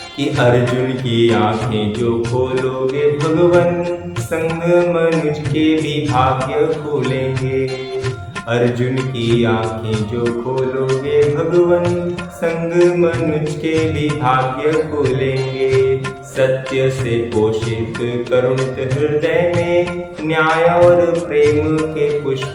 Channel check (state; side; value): identical; both; correlation 1.00